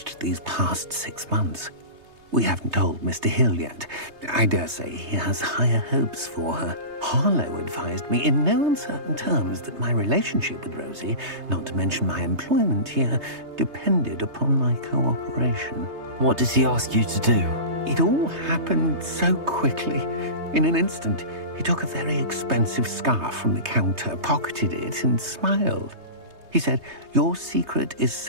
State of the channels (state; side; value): late; left; 3.3 ms